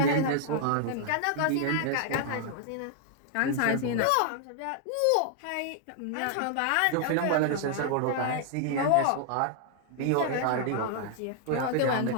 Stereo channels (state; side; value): different; both; correlation 0.00